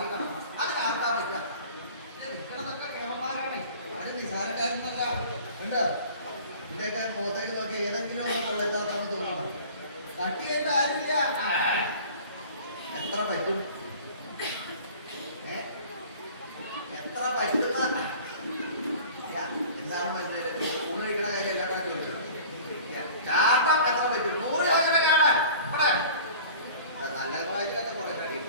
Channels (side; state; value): both; inverted; correlation -0.44